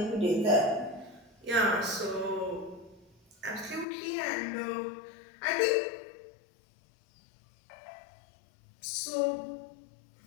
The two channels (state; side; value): drops out; right; at 3.9 s